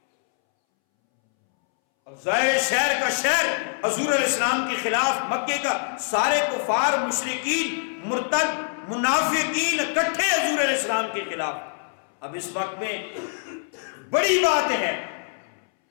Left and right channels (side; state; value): right; silent; 62 dB below the other